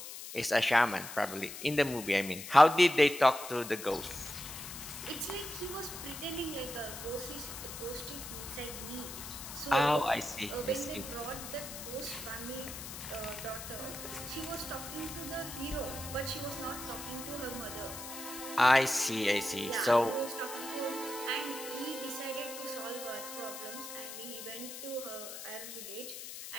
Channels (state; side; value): noise; left; hiss, 10 dB below the sound